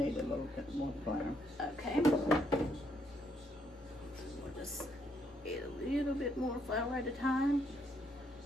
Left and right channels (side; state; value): both; normal; correlation 0.73